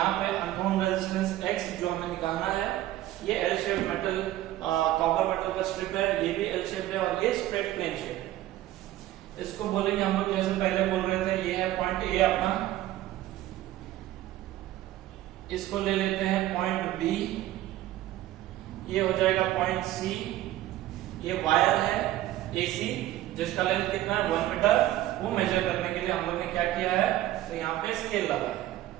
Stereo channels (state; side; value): quieter; left; 14.6 dB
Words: पे अननोन रेजिस्टेंस एक्स जो हमें निकालना है, ये L shape metal copper metal का स्ट्रिप है, ये भी एल शेप है और ये स्ट्रेट प्लेन शेप है। इसको बोलेंगे हम लोग जैसे पहले बोल रहे थे, ये है पॉइंट ए अपना, इसको ले लेते हैं पॉइंट बी, ये हो जाएगा पॉइंट सी, ये वायर है एसी जिसका लेंथ कितना है 1 मीटर, वो मेजर करने के लिए हम लोग ने क्या किया है, तो यहाँ पे स्केल लगाया।